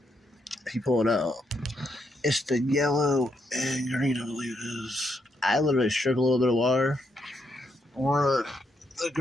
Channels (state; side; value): normal; both; correlation 0.78